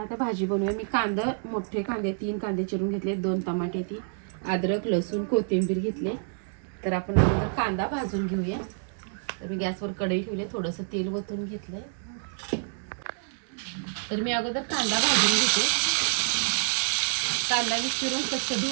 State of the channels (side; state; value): left; silent; digital silence